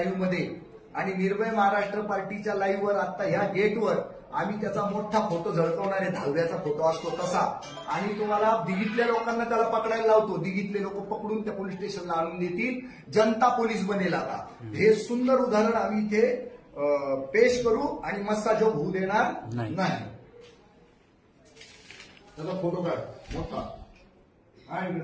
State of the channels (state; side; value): identical; both; correlation 1.00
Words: मध्ये आणि निर्भय महाराष्ट्र पार्टीच्या लाईव्हवर आता ह्या गेटवर आम्ही त्याचा मोठा फोटो झळकवणार आहे. 10व्याचा फोटो असतो तसा. आणि तुम्हाला दिघीतल्या लोकांना त्याला पकडायला लावतो. दिघीतले लोक पकडून त्या पोलीस स्टेशनला आणून देतील. जनता पोलीस बनेल आता. हे सुंदर उदाहरण आम्ही इथे पेश करू आणि मस्ताजोग होऊ देणार नाही. त्याचा फोटो काढ मोठा. आणि